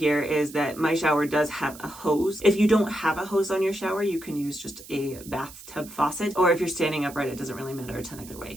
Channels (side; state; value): right; noise; hiss, 17 dB below the sound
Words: is that my shower does have a hose. If you don't have a hose on your shower, you can use just a bathtub faucet, or if you're standing upright, it doesn't really matter a ton either way.